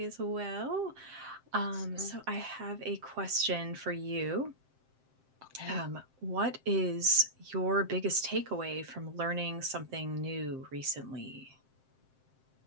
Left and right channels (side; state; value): left; late; 7.6 ms